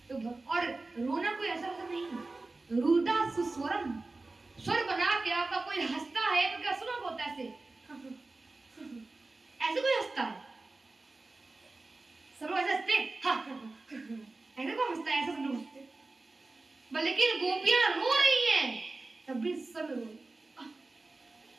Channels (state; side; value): quieter; left; 3.3 dB